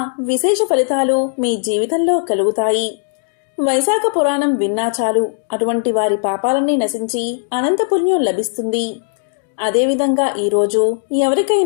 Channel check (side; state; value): right; silent; digital silence